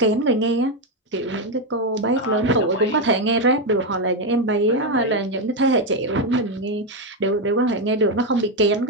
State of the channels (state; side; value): normal; both; correlation 0.06